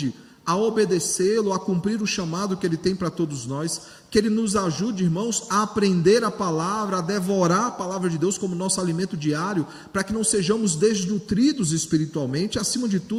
a obedecê-lo, a cumprir o chamado que Ele tem para todos nós, que Ele nos ajude, irmãos, a aprender a palavra, a devorar a palavra de Deus como nosso alimento diário, para que não sejamos desnutridos espiritualmente, acima de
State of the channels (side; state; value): both; identical; correlation 1.00